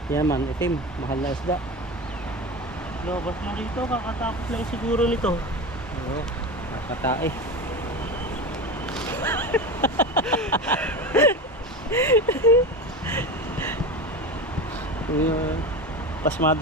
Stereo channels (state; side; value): normal; both; correlation 0.25